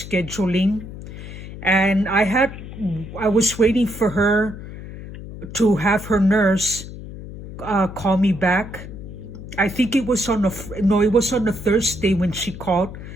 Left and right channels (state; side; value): noise; left; hum, 12 dB below the sound